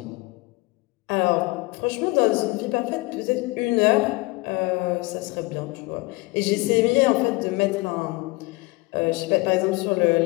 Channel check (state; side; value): quieter; right; 23.8 dB